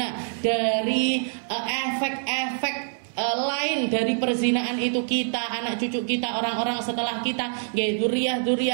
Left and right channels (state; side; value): silent; left; 61 dB below the other